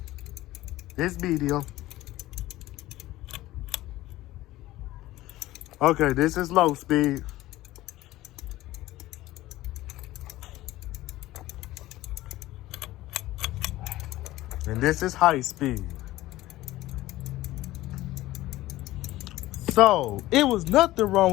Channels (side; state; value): right; quieter; 16.5 dB